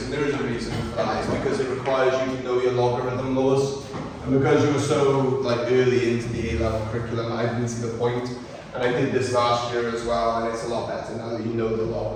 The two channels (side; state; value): both; identical; correlation 1.00